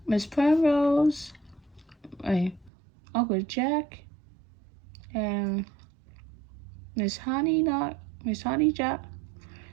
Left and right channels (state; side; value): drops out; left; at 2.7 s